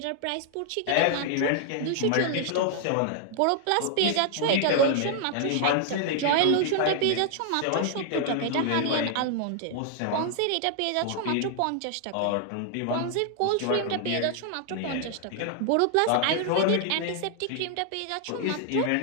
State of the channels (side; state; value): both; different; correlation 0.00